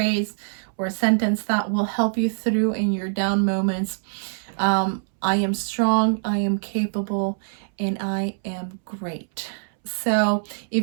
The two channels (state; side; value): silent; left; 63 dB below the other